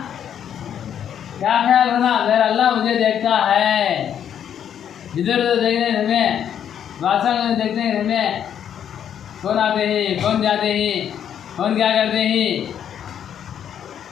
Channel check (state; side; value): quieter; right; 9.2 dB